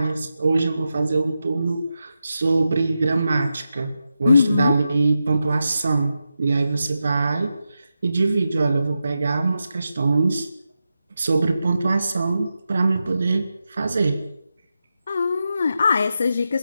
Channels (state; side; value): inverted; both; correlation -0.89